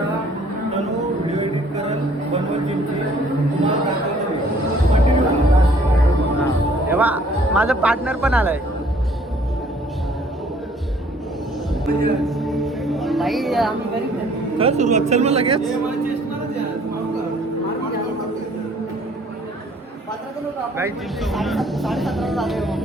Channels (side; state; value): both; normal; correlation 0.58